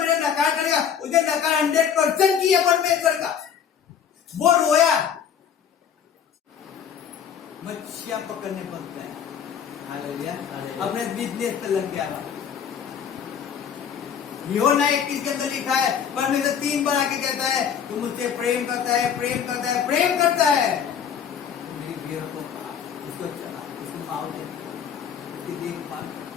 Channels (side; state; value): right; quieter; 8.0 dB